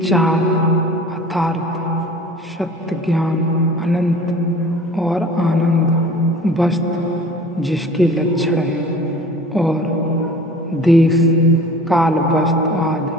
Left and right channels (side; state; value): both; normal; correlation 0.44